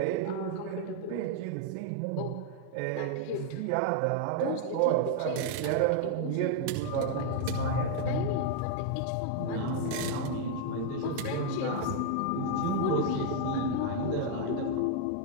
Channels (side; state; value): both; different; correlation 0.00